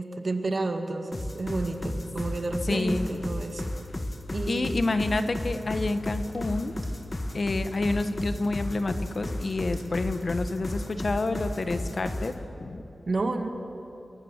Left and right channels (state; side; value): normal; both; correlation 0.95